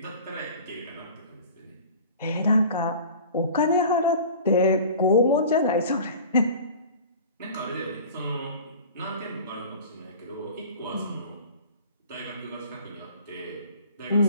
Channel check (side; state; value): both; inverted; correlation -0.41